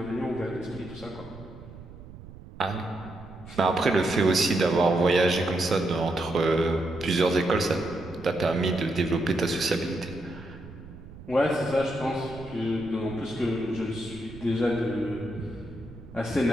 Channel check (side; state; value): right; noise; rumble, 16 dB below the sound